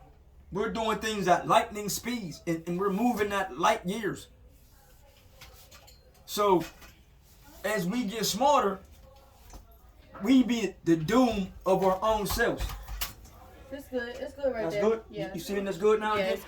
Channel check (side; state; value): both; identical; correlation 1.00